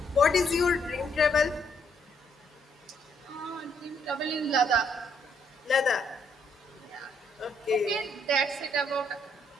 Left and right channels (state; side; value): normal; both; correlation 0.71